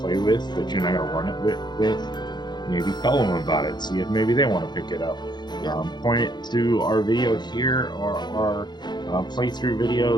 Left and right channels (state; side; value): late; right; 0.21 ms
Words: play with, that you're not going to run it with, maybe tell them about it, see if maybe they want to pick it up. Point it to our video here, or our playthrough